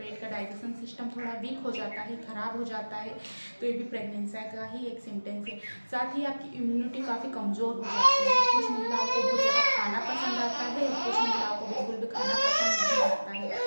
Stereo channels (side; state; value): both; inverted; correlation -1.00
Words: का डाइजेशन सिस्टम थोड़ा वीक हो जाता है, ख़राब हो जाता है, तो ये भी प्रेगनेंसी का ही एक सिम्टम्स है। साथ ही आपकी इम्यूनिटी काफ़ी कमज़ोर हो जाती है। कुछ महिलाओं को बहुत ज़्यादा खाना पसंद आता है, कुछ महिलाओं को बिल्कुल भी खाना पसंद नहीं आता है,